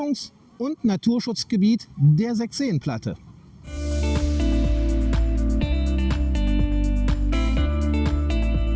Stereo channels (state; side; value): identical; both; correlation 1.00